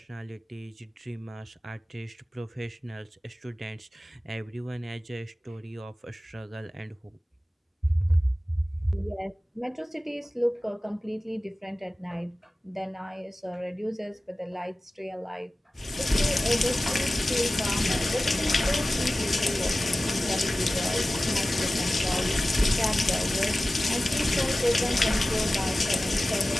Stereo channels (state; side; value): normal; both; correlation 0.96